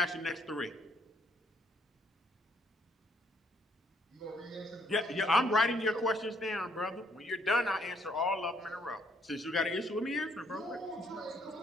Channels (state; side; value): normal; both; correlation 0.69